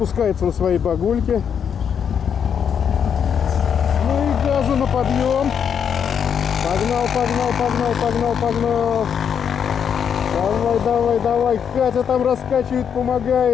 на своей багульке. Ну и газу на подъем. Погнал, погнал, погнал, погнал, погнал. Давай, давай, давай. Катя там раскачивает,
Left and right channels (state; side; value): quieter; right; 7.7 dB